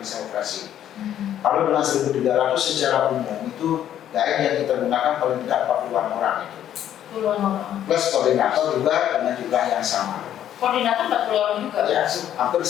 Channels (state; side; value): quieter; right; 10.8 dB